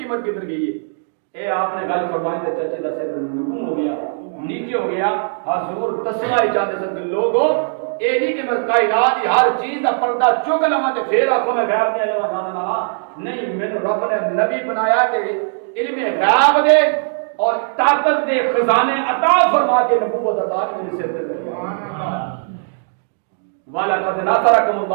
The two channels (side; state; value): left; silent; digital silence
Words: کدھر گئی ہے اے آپ نے گل فرمائی تے چچے دا سر نگم ہو گیا نیچے ہو گیا حضور تسلا ہی چاہتے سن کہ لوگوں اے نہیں کہ میں کائنات کی ہر چیز کا پردہ چک لواں تے پھر آکھو میں غیب نہیں آیا جاننا نہیں مینوں رب نے نبی بنایا کہ علم غیب دے اور طاقت دے خزانے عطا فرما کے نبوت عطا میرے سر تے سبحان اللہ والا قد نصرکم